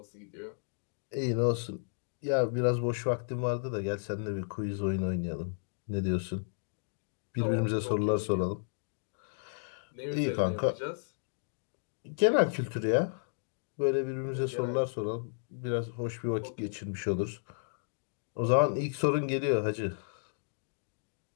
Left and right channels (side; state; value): right; silent; digital silence